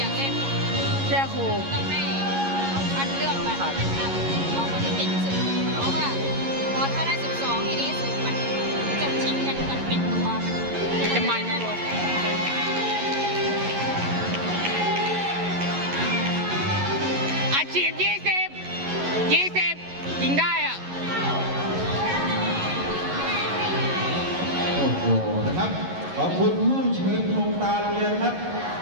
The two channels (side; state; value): left; late; 11 ms